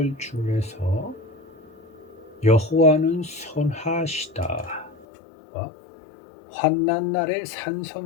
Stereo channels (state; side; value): drops out; right; at 5.1 s